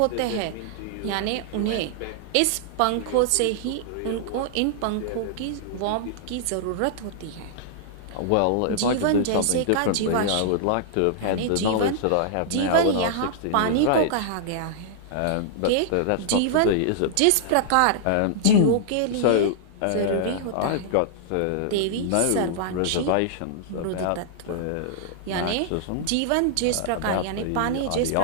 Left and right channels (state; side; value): different; both; correlation -0.01